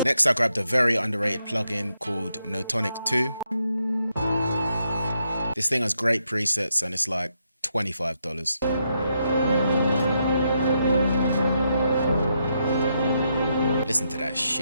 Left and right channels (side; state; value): both; inverted; correlation -0.80